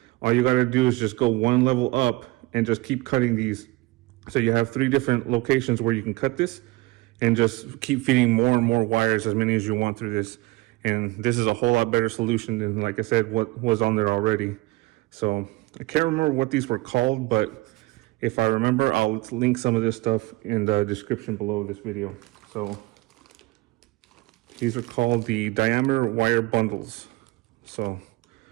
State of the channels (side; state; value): left; quieter; 21.0 dB